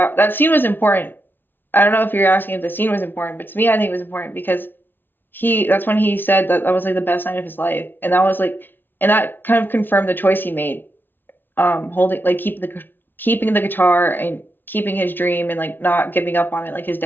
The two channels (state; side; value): late; right; 0.097 ms